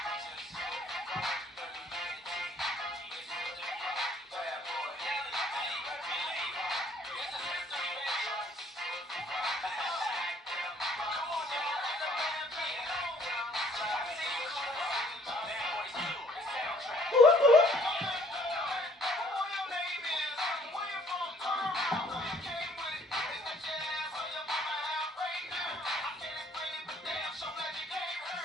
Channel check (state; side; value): normal; both; correlation 0.60